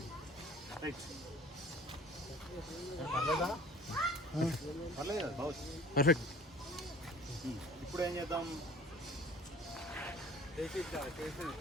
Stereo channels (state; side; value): normal; both; correlation 0.46